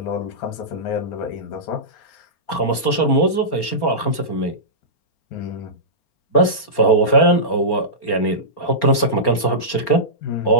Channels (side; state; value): right; late; 4.3 ms